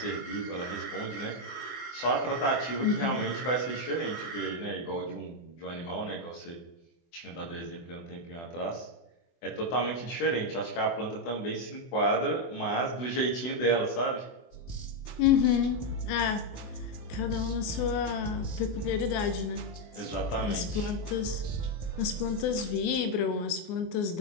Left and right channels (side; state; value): right; late; 24 ms